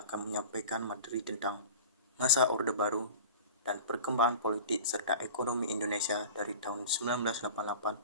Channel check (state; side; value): inverted; both; correlation -0.37